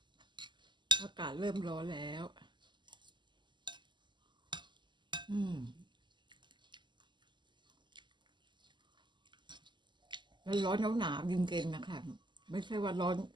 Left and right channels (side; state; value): left; late; 0.22 ms